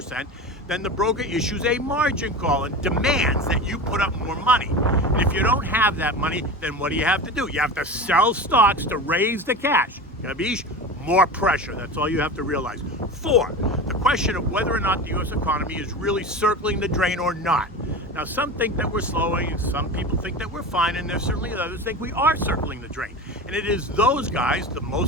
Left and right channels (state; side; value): normal; both; correlation 0.29